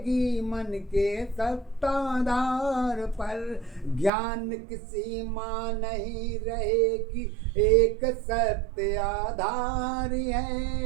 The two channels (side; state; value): left; drops out; at 4.1 s